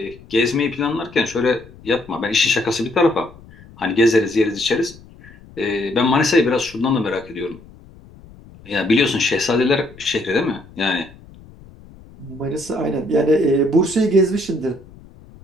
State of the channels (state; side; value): noise; left; rumble, 22 dB below the sound